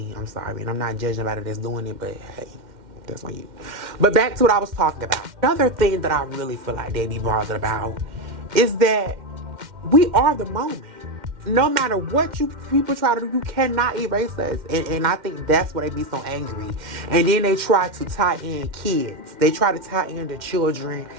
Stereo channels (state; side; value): late; left; 2.1 ms